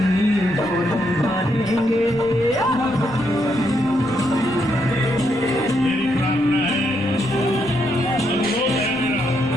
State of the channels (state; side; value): noise; left; rumble, 20 dB below the sound